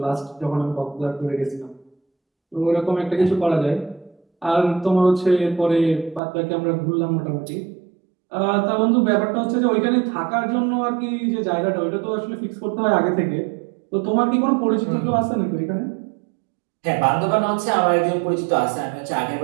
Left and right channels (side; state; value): left; drops out; at 6.2 s